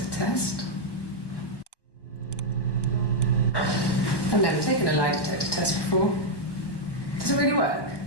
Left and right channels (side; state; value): right; late; 1.1 ms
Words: test. I've never taken a lie detector test before. Does it really work?